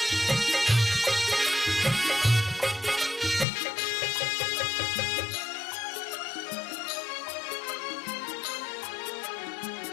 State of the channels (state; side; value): drops out; right; at 3.5 s